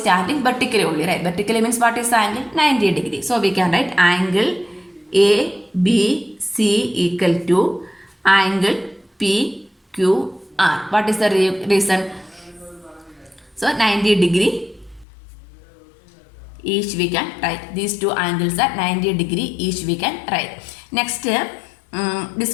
vertically only, right. Vertically means what is the angle? 90 degree. So we can write angle ABC equal to angle PQR. What is the reason? So 90 degree each we can write. These two angles are 90 degree each we can write. Next, this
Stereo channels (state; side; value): drops out; right; at 15.1 s